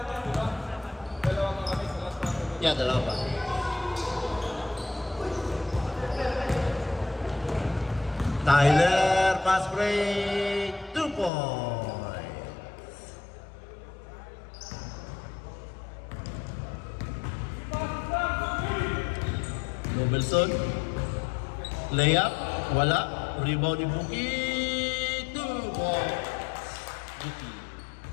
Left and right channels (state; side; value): drops out; right; at 11.3 s